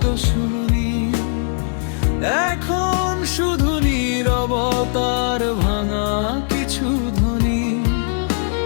শুনি, এখন শুধু নীরবতার ভাঙা কিছু ধ্বনি।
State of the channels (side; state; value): right; silent; 66 dB below the other